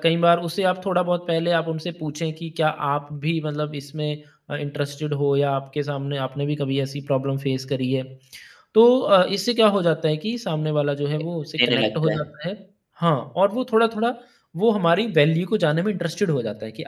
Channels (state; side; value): identical; both; correlation 1.00